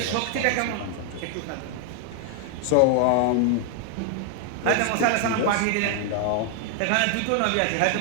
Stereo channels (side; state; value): both; different; correlation 0.00